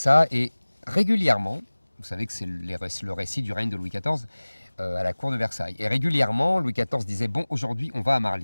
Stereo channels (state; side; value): inverted; both; correlation -1.00